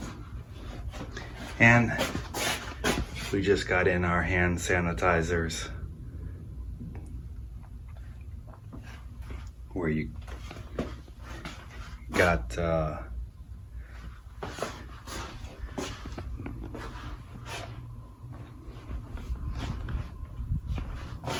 And we just got in our hand sanitizers, where you got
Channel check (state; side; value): identical; both; correlation 1.00